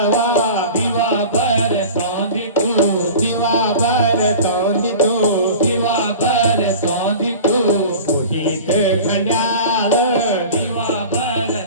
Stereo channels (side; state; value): both; inverted; correlation -0.38